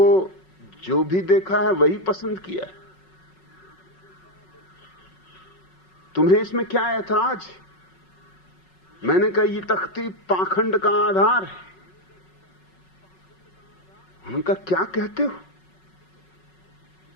जो भी देखा है वही पसंद किया है, तुम्हें इसमें क्या ऐतराज है? मैंने कहा ये तख्ती पाखंड का आधार है। उनका क्या कहते हो?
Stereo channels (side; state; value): right; late; 5.4 ms